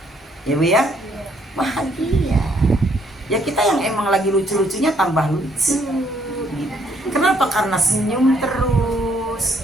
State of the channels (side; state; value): both; normal; correlation 0.68